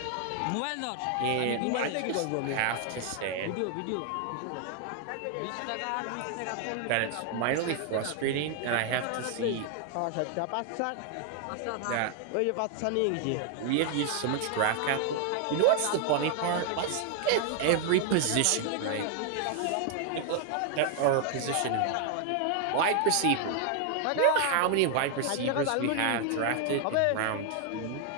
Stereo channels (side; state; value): both; different; correlation 0.00